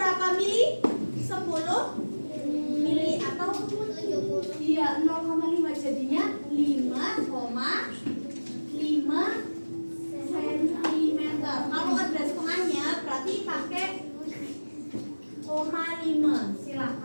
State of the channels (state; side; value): inverted; both; correlation -1.00